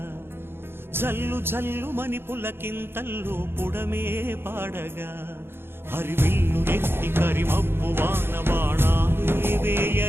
జల్లు జల్లు మని పులకింతల్లు పుడమే పాడగా హరివిల్లు ఎత్తి కరిమబ్బు వాన బాణాలే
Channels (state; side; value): late; left; 0.11 ms